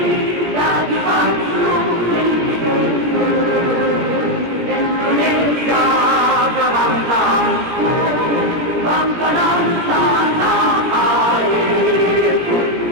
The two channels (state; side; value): late; left; 17 ms